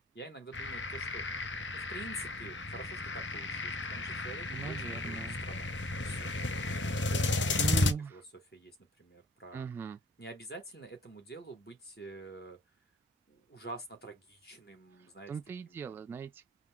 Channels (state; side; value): normal; both; correlation 0.54